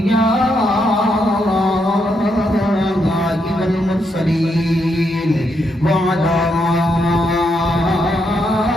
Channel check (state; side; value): normal; both; correlation 0.79